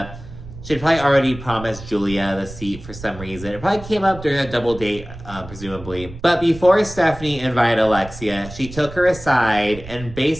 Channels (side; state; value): right; noise; rumble, 14 dB below the sound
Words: she'd probably already promised Julia the seat for some reason. It probably came up during a double date, presumably. But before Stephanie invited Alexia, she took her aside and